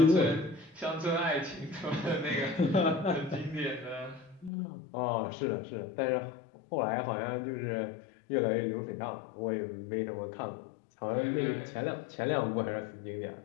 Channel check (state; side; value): drops out; right; at 4.5 s